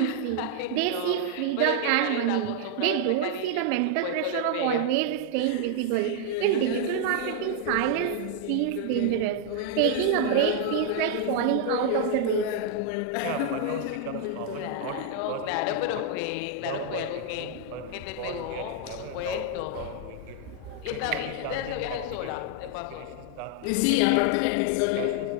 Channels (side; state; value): both; different; correlation 0.00